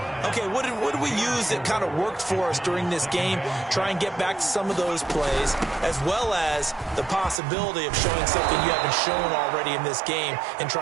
Okay, what did we use that kind of worked for us during this game? Try and get back to some of those plays, as well as the possibility of showing something you haven't shown already in this game and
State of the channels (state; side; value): drops out; left; at 7.4 s